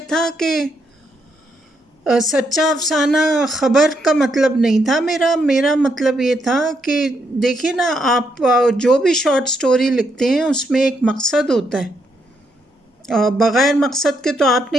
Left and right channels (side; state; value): both; normal; correlation 0.77